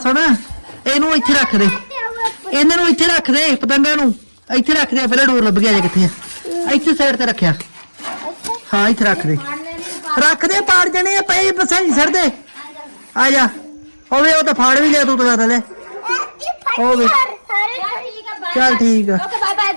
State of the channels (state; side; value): inverted; both; correlation -1.00